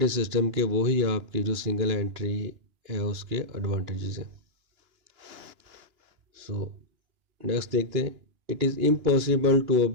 सिस्टम के, वही आपकी जो सिंगल एंट्री है उसके एडवांटेजेस हैं। सो नेक्स्ट देखते हैं। It is impossible to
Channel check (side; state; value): left; late; 2.9 ms